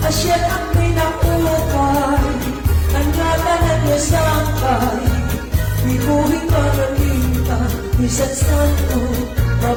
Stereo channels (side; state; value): both; identical; correlation 1.00